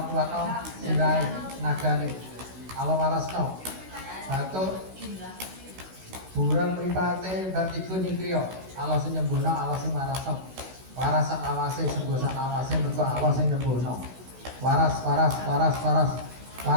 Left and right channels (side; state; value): left; late; 16 ms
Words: kuatno sirai nagane. Allah warasno. Batuk burung mripate vertigo nyingkrio. Allah sing nyembuhno, Allah sing warasno. Waras sak awase sembuh sak awase mergo Allah sing nyembuhno. Waras waras waras waras.